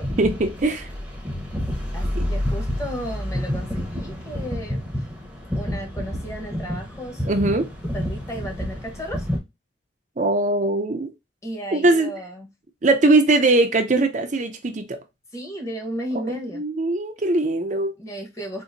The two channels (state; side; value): normal; both; correlation 0.49